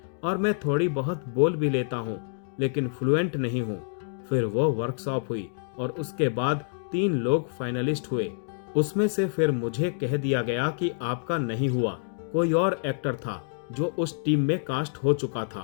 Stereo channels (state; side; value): silent; right; digital silence